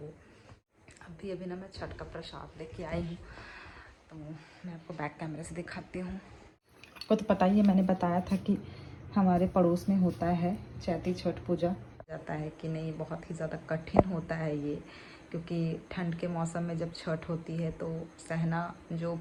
अभी अभी ना मैं छठ का प्रसाद लेके आई हूँ, तो मैं आपको बैक कैमरे से दिखाती हूँ। आपको तो पता ही है, मैंने बताया था कि हमारे पड़ोस में होता है चैती छठ पूजा। जाता है कि नहीं, बहुत ही ज़्यादा कठिन होता है ये, क्योंकि ठंड के मौसम में जब छठ होती है तो सहना जो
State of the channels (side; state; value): both; identical; correlation 1.00